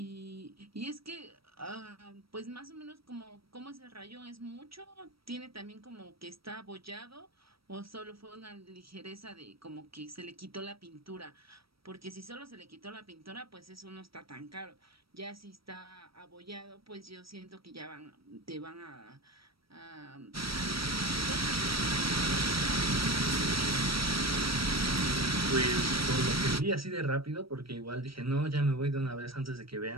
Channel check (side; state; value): left; late; 0.75 ms